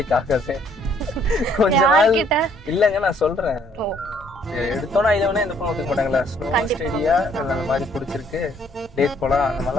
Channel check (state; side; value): normal; both; correlation 0.64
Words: ஆகாது. கொஞ்ச நாள் இல்லங்க நான் சொல்றேன். எடுத்தோன்னே ஐ லவ்னே எந்த பொண்ணு ஒத்துக்க மாட்டாங்களா? ஸ்லோவா ஸ்டடியா அந்த மாதிரி பிடிச்சிருக்கு டேட் போலாம் அந்த